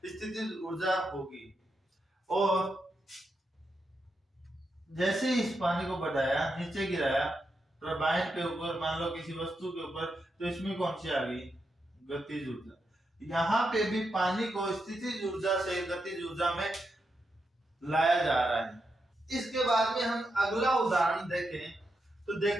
स्थितिज ऊर्जा होगी। और जैसे इस पानी को बढ़ाया, नीचे गिराया टरबाइन के ऊपर, मान लो किसी वस्तु के ऊपर, तो इसमें कौन सी आ गई, गतिज ऊर्जा। यहाँ पे भी पानी को स्थितिज ऊर्जा से गतिज ऊर्जा में लाया जा रहा है। इसके बाद में हम अगला उदाहरण देखें तो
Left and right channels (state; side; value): normal; both; correlation 0.85